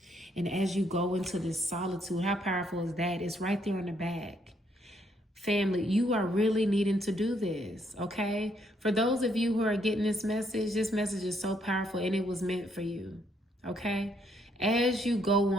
and as you go into this solitude, how powerful is that? It's right there in the back. Family, you are really needing to do this, okay? For those of you who are getting this message is so powerful, and it was meant for you, okay? As you go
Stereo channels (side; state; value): both; normal; correlation 0.72